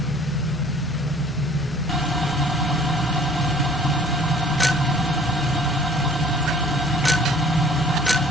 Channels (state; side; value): normal; both; correlation 0.53